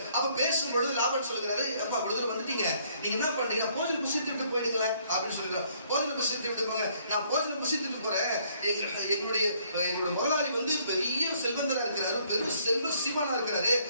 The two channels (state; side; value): inverted; both; correlation -0.65